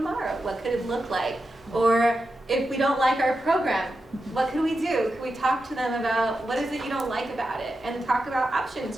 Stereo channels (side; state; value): both; normal; correlation 0.89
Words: What could it look like? Or if we don't like our program, what could we do? Could we talk to them about what is it you don't like about it, and talk about